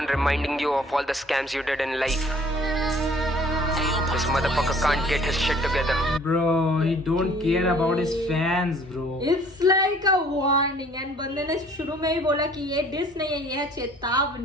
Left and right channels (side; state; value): both; normal; correlation 0.55